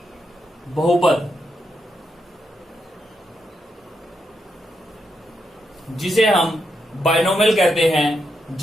बहुपद, जिसे हम बाइनोमियल कहते हैं,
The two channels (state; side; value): normal; both; correlation 0.82